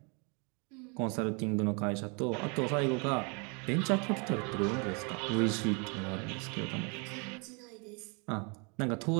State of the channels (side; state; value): left; quieter; 33.5 dB